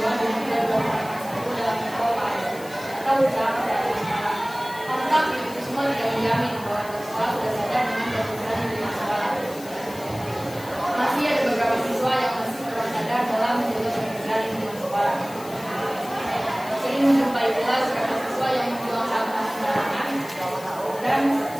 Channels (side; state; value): left; noise; hiss, 18 dB below the sound